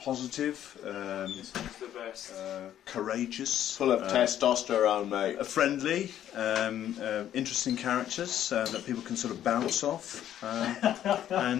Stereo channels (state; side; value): quieter; right; 11.1 dB